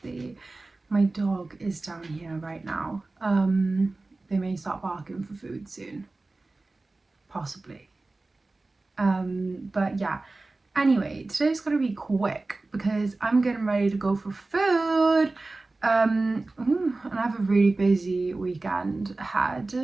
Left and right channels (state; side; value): quieter; left; 3.3 dB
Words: My dog is down here right now. They may start barking for food soon, possibly. But yeah. Anyway, today's gonna be quick because I'm getting ready to go for food. And I have a really busy weekend ahead.